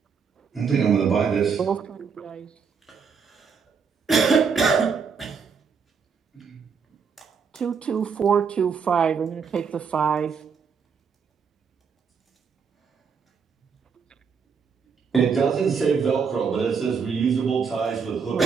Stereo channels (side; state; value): left; quieter; 6.0 dB